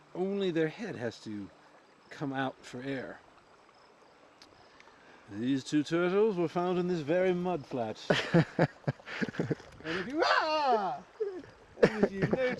only their head has to come out for air. These 2 turtles were found in this very mud flat. And if you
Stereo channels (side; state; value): both; identical; correlation 1.00